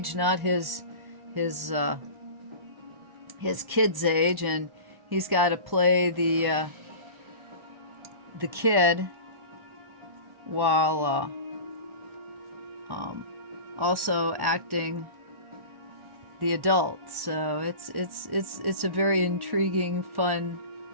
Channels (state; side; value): late; left; 1.1 ms